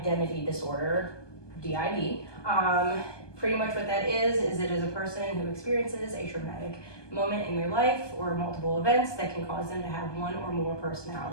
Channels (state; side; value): late; right; 1.2 ms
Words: disorder, DID. Pretty much what that is it is a person who experiences a traumatic moment in their life or multiple events that can cause them to have one or more